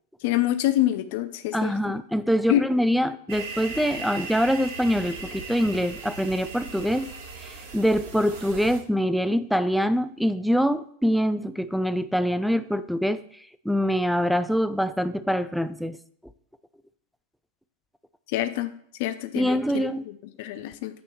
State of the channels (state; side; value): normal; both; correlation 0.78